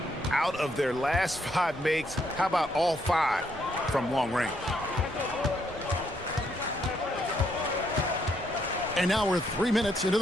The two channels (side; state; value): both; normal; correlation 0.74